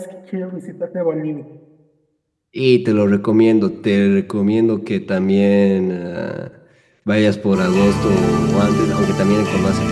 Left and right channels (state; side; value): identical; both; correlation 1.00